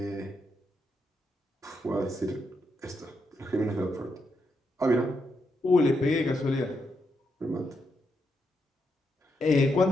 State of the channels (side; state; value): both; normal; correlation 0.81